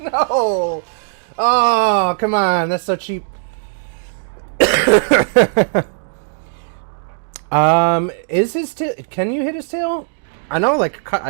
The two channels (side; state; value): left; silent; digital silence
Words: No! Oh, come on. That's so cheap. Is his tail... Can you hit his tail? I know, like,